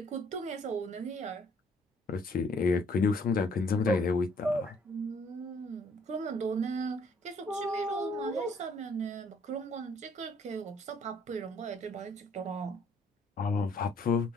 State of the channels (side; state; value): both; normal; correlation 0.63